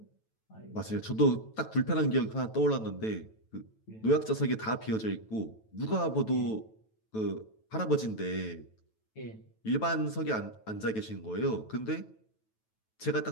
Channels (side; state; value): right; late; 9.1 ms